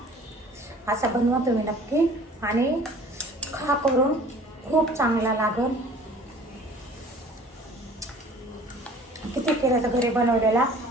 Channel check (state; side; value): normal; both; correlation 0.49